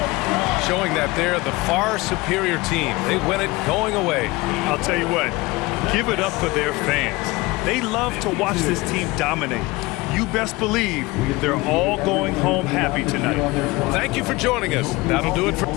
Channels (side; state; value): right; quieter; 22.0 dB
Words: showing that they're the far superior team. They win it going away. I'll tell you what, give it up for their fans. They love to watch this team dominate. You best believe they're all going home happy tonight. Thank you for joining us. That'll do it for